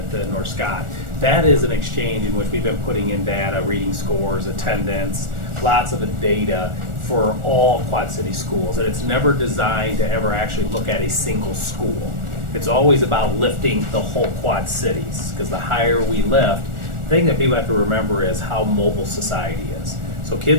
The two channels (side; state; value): left; late; 1.4 ms